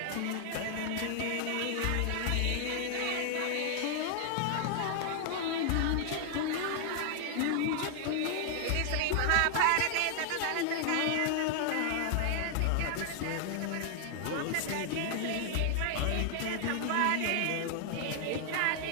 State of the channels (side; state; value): both; different; correlation 0.00